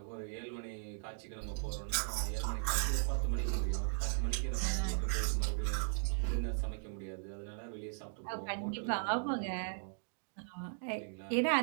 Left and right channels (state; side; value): silent; left; digital silence